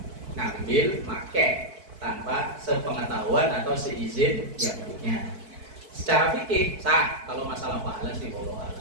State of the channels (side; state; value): left; late; 4.6 ms